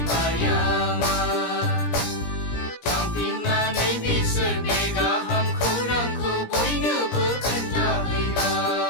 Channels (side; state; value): right; late; 17 ms